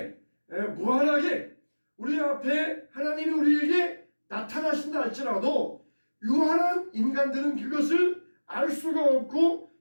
무한하게 우리 앞에 하나님이 우리에게 나타나신다 할지라도 유한한 인간들은 그것을 알 수가 없고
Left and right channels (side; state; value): both; inverted; correlation -1.00